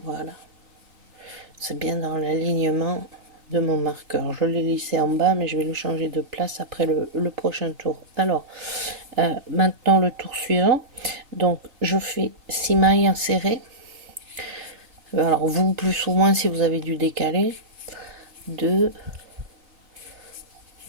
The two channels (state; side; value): late; left; 3.3 ms